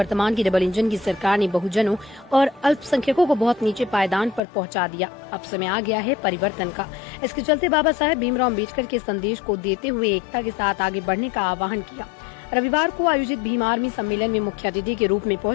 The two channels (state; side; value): drops out; right; at 4.4 s